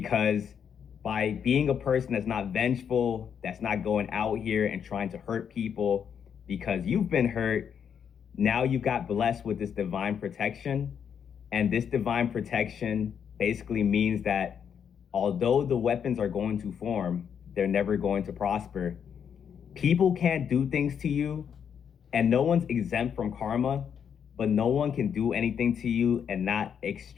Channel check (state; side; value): quieter; right; 7.8 dB